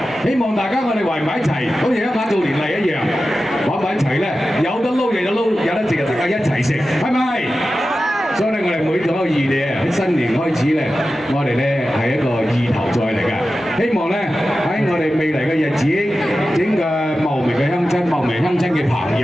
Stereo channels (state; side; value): normal; both; correlation 0.93